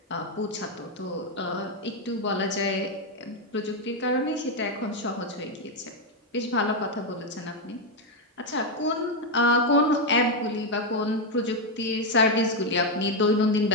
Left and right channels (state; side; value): normal; both; correlation 0.04